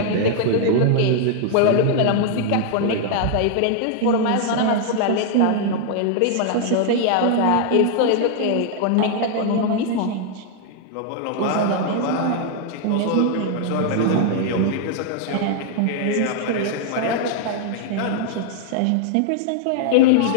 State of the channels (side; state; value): both; different; correlation 0.00